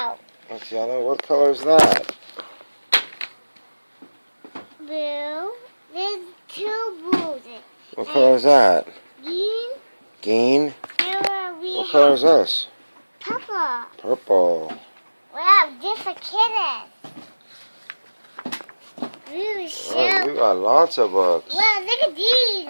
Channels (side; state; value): both; inverted; correlation -1.00